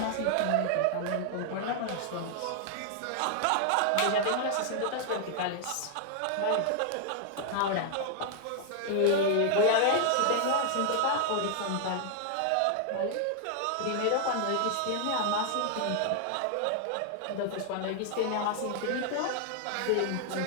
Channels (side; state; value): both; different; correlation 0.00